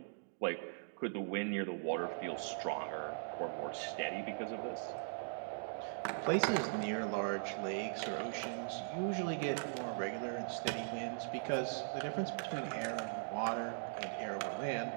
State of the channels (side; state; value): left; silent; digital silence